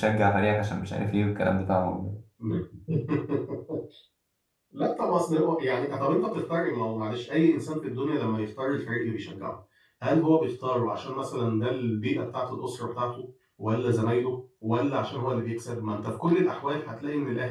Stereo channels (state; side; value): identical; both; correlation 1.00